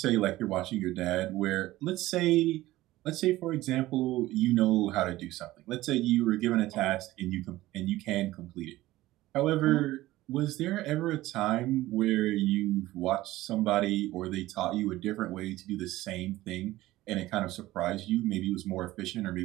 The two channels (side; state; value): left; quieter; 16.8 dB